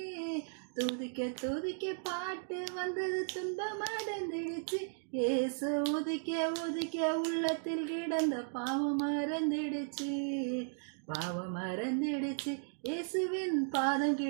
துதிக்க துதிக்க பாட்டு வந்தது துன்பம் மறந்துடுச்சு. இயேசு உதிக்க உதிக்க உள்ளத்தில் கிடந்த பாவம் மறந்துடுச்சு. பாவம் மறந்துடுச்சு. இயேசுவின் பாதம்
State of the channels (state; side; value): silent; left; digital silence